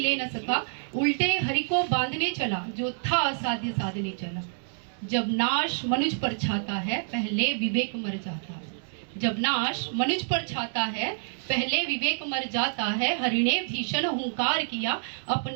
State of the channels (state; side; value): silent; left; digital silence